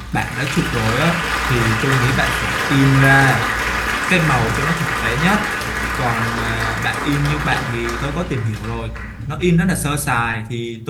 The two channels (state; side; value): identical; both; correlation 1.00